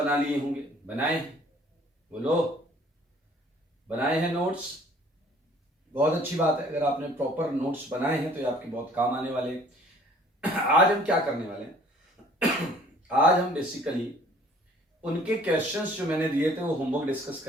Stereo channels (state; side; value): normal; both; correlation 0.55